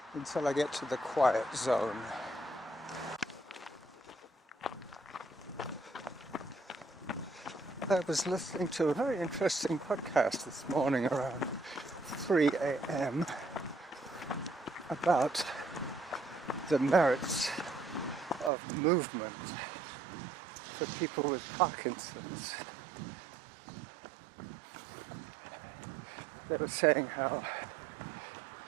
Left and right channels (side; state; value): left; drops out; at 18.5 s